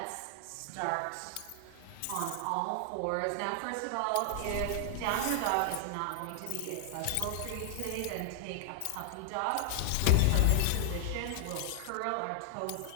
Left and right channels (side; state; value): both; different; correlation 0.00